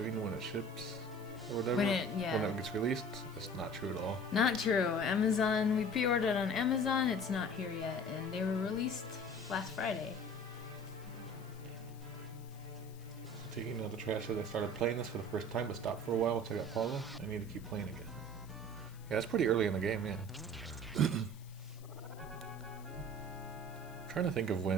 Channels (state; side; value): noise; left; hiss, 23 dB below the sound